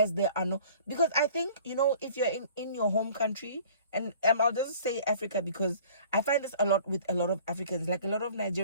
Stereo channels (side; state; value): both; inverted; correlation -0.50